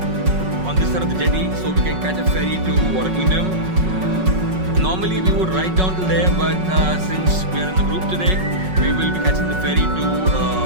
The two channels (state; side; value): late; left; 5.4 ms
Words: on this side of the jetty so we can catch a ferry to Water Kingdom. Normally we would ride down to there, but since we are in a group today, we will be catching the ferry